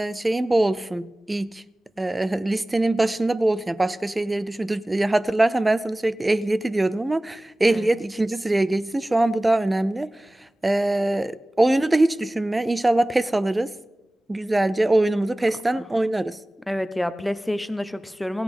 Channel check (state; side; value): normal; both; correlation 0.98